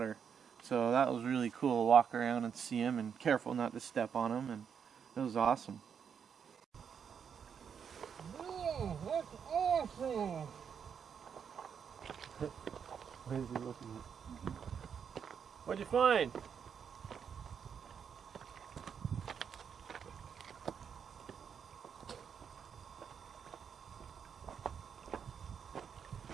So that was really cool to walk around and see them, and careful not to step on them, and it was awesome. Oh, that's awesome! What is he looking at? What'd you find?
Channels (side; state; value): left; quieter; 7.2 dB